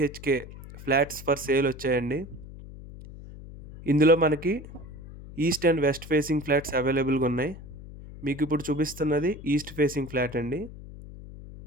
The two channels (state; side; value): noise; left; hum, 15 dB below the sound